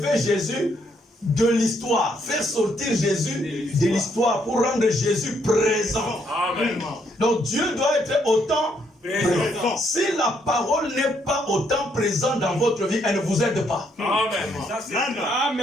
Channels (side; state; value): both; normal; correlation 0.72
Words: Jésus de l'histoire, faire sortir Jésus de l'histoire pour rendre Jésus présent. Amen. Donc Dieu doit être autant présent. Si la parole n'est pas autant présente dans votre vie, elle ne vous aide pas. Amen.